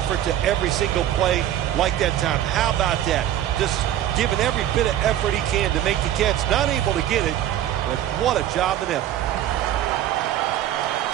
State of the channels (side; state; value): left; quieter; 11.8 dB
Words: to every single play like that time, how about that? Just giving every bit of effort he can to make the catch. Not able to get it, but what a job and effort.